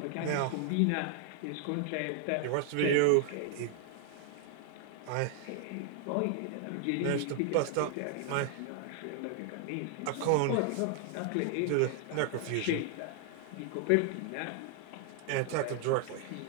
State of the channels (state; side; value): different; both; correlation 0.00